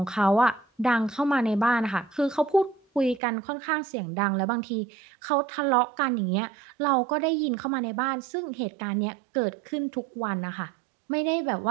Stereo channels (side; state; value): left; drops out; at 3.2 s